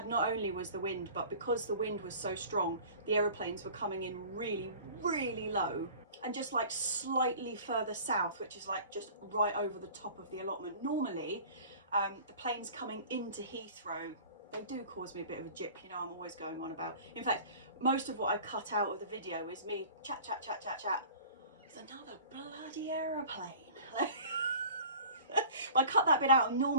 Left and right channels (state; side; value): inverted; both; correlation -0.44